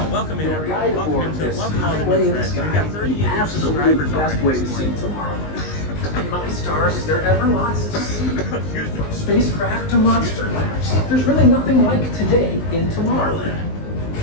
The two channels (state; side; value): late; right; 19 ms